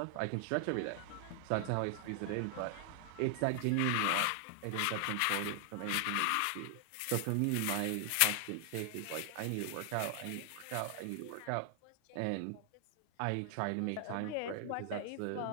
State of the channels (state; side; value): different; both; correlation 0.00